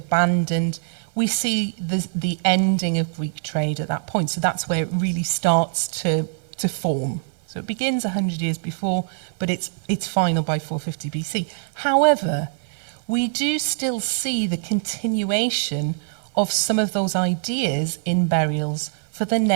We see the ending of Greek trade at that point. So that's where it really starts to form. So it begins 100 years before, but it's final by 450 BC. However, we do still see the continuation of some of those ideas in burials for the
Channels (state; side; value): silent; left; digital silence